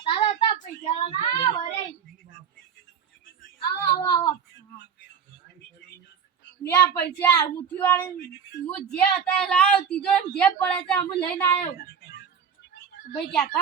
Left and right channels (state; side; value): quieter; left; 7.3 dB